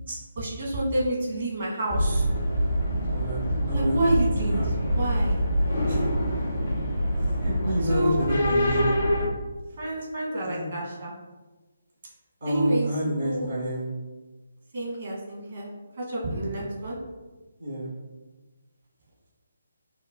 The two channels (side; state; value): both; inverted; correlation -0.84